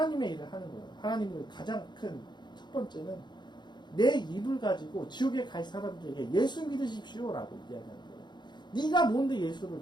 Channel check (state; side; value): late; right; 0.21 ms